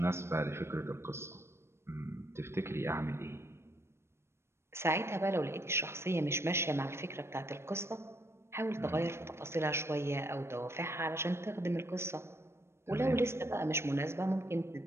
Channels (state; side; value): late; left; 0.12 ms